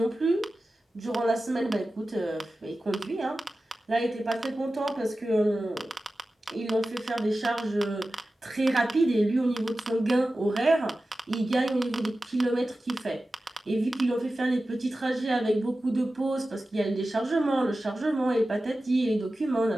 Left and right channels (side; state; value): both; normal; correlation 0.94